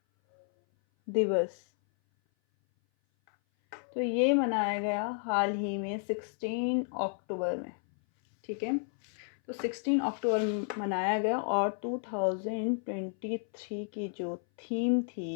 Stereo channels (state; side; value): silent; right; 56 dB below the other